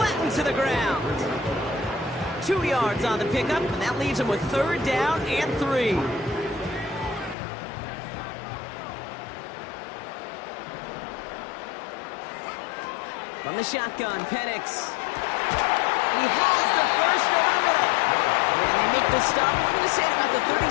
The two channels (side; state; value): right; drops out; at 7.4 s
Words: to the ground. 2 yards on the pickup, and that leaves him with 3rd down and 3. From the shotgun, Penix. He has the first over the middle. And they make the stop. We're going to say at about the